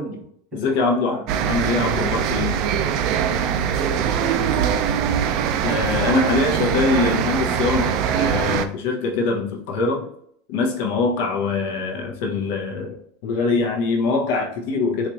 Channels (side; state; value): both; normal; correlation 0.23